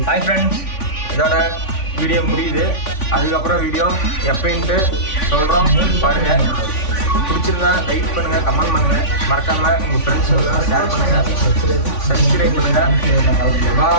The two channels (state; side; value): late; right; 3.5 ms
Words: ஹாய் ஃப்ரெண்ட்ஸ், இதோட வீடியோ முடியுது. அதுக்கப்புறம் வீடியோ எப்போன்ட்டு சொல்கிறோம். பாருங்கள், பிடிச்சிருந்தா லைக் பண்ணுங்கள், கமெண்ட் பண்ணுங்கள், மறக்காமல் உங்கள் ஃப்ரெண்ட்ஸோட ஷேர் பண்ணுங்கள், சப்ஸ்கிரைப் பண்ணுங்கள்.